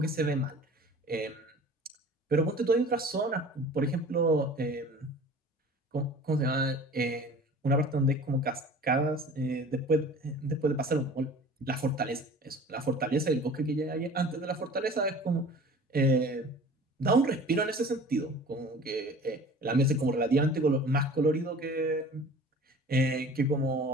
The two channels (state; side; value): normal; both; correlation 0.44